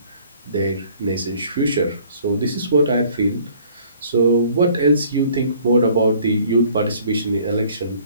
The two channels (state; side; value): inverted; both; correlation -0.57